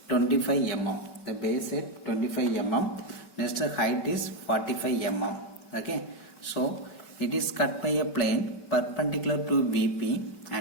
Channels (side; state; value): right; late; 5.2 ms